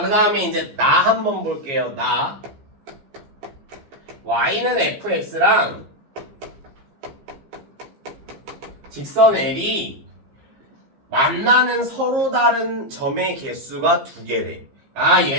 다음에 이제 나 한번 볼게요. 나 y는 fx랑 직선 L이 만나는 서로 다른 점의 개수가 2개래. 아,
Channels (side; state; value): left; late; 15 ms